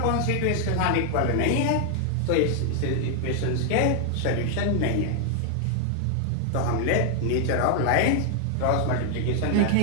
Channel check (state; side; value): different; both; correlation 0.00